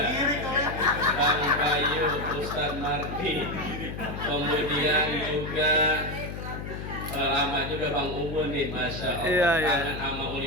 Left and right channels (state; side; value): noise; left; hum, 7 dB below the sound